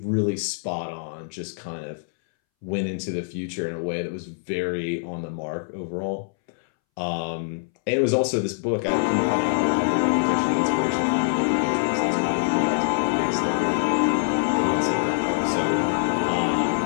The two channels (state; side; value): silent; right; 62 dB below the other